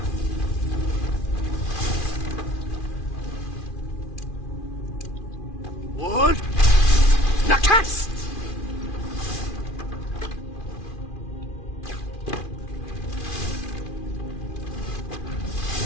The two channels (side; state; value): right; late; 2.4 ms